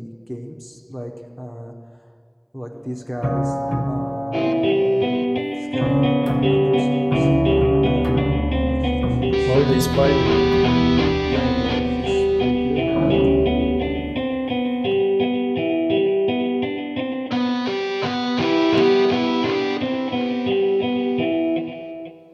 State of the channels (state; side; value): identical; both; correlation 1.00